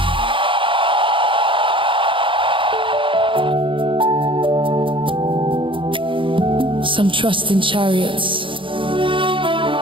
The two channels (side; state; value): left; late; 0.25 ms